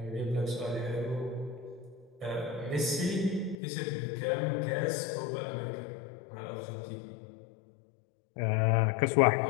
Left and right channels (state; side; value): drops out; right; at 3.6 s